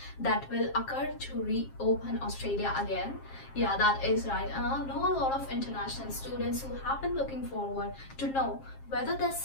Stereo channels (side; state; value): right; late; 7.5 ms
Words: that will occur to reopen Australia again. Yeah, that is right. And I know a lot of international students who have been looking forward to know whether